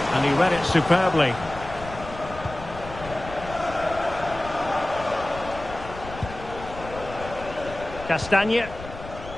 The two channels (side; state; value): left; noise; rumble, 13 dB below the sound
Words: And he read it superbly. Castagne.